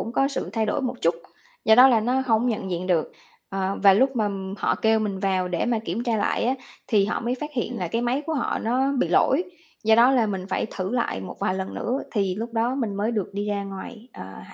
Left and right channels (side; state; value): both; identical; correlation 1.00